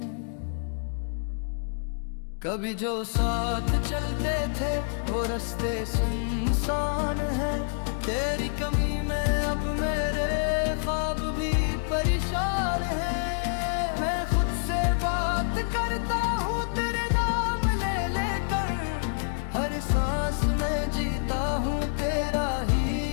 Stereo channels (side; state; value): right; silent; digital silence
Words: कभी जो साथ चलते थे वो रास्ते सुनसान है, तेरी कमी में अब मेरे ख्वाब भी परेशान है। मैं खुद से बात करता हूँ तेरे नाम ले लेकर, हर सांस में जीता हूँ तेरा